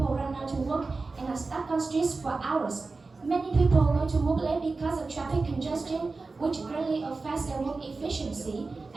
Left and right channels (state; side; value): quieter; left; 3.9 dB